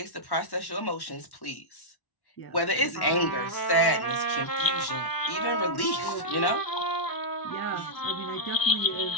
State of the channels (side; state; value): right; late; 1.1 ms